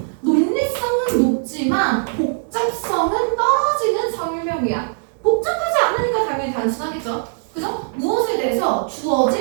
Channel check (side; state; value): left; silent; digital silence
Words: 논리성은 높지만 복잡성은 떨어지는 설명이야. 복잡하지 않으니까 당연히 단순하겠죠. 그죠? 무엇에 대해서?